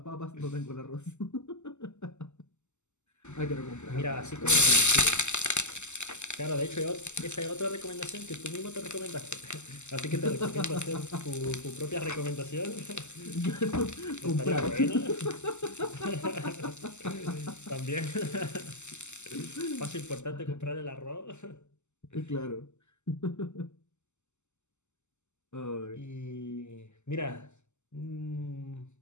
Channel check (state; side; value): late; right; 0.83 ms